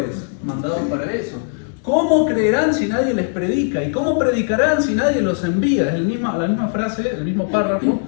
mandados para eso. ¿Cómo creerán si nadie les predica? ¿Y cómo predicarán si nadie los envía? Es la misma frase, el mismo párrafo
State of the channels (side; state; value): right; silent; digital silence